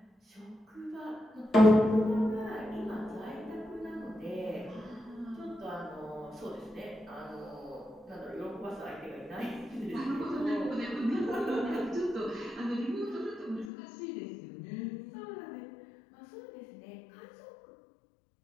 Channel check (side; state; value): right; drops out; at 13.7 s